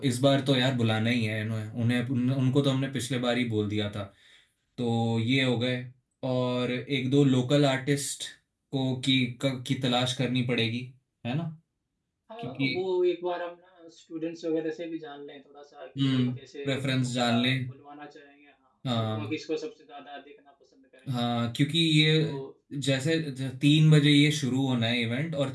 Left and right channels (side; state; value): both; identical; correlation 1.00